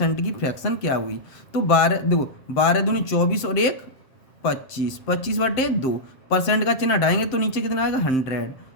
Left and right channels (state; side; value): late; right; 7.6 ms